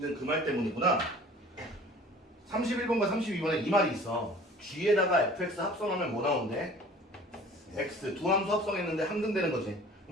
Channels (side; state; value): both; normal; correlation 0.47